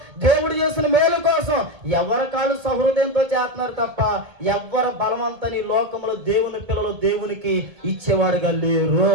దేవుడు చేసిన మేలు కోసం. ఎవరి కాళ్ళు సహృదయంతో చేస్తున్నారు తప్ప ఎవరు బలవంతని లోకంలో దేవుని పిల్లలు దేవునికి ఇచ్చేవాడుగా లేరు.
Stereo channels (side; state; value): left; late; 1.7 ms